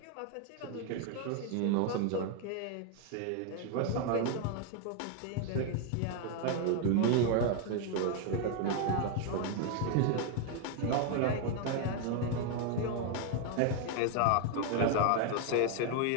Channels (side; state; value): both; different; correlation 0.01